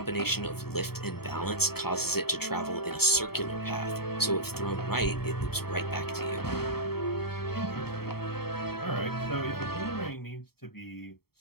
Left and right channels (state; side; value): late; right; 0.95 ms